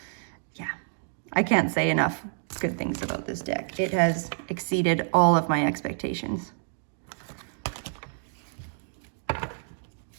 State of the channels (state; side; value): silent; left; digital silence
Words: can't say enough good things about this deck. It has exceeded all of my expectations.